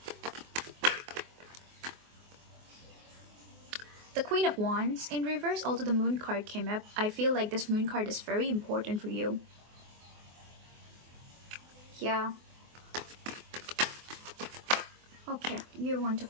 The Queen of Wands in reverse, although the Moon card came up, I feel like this Moon card is very important for you. Yeah. Okay, you want to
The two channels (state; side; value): late; left; 24 ms